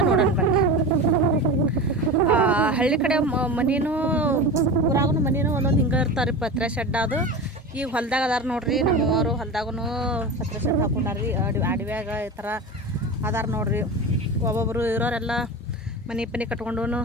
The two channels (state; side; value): normal; both; correlation 0.28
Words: ನೋಡೋಣ ಬನ್ನಿ. ಹಳ್ಳಿ ಕಡೆ ಮನೇನು ಊರಾಗೂ ಮನೇನು ಒಂದೊಂದು ಹಿಂಗೆ ಇರ್ತಾರೆ ರೀ, ಪತ್ರೆ ಶೆಡ್. ಅದು ಈಗ ಹೊಲ್ದಾಗ ಅದಾರ ನೋಡ್ರಿ, ನಮ್ಮವರು ಹೊಲ್ದಾಗೂ ಪತ್ರೆ ಶೆಡ್ ಹಾಕೊಂಡಾರ್ರಿ. ಅಡವ್ಯಾಗ ಈ ಥರ ಅದಾರ ನೋಡ್ರಿ. ಒಬ್ಬೊಬ್ಬರು ಇರೋರೆಲ್ಲ ಮನೆ ಪನಿ ಕಟ್ಕೊಂಡು